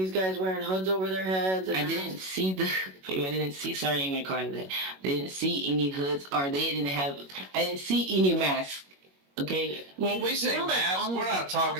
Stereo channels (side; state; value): left; late; 21 ms